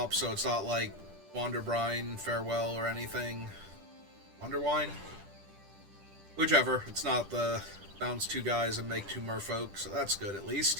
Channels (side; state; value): left; late; 10 ms